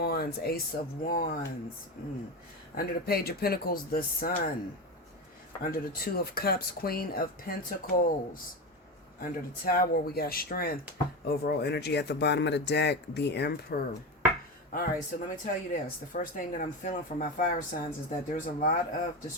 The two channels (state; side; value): normal; both; correlation 0.20